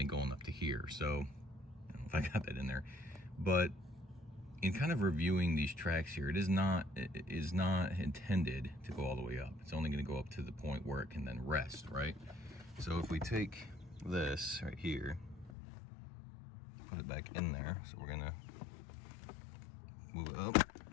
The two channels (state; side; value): drops out; right; at 15.5 s